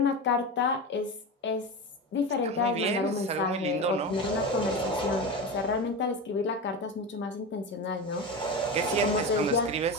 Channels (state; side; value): normal; both; correlation 0.23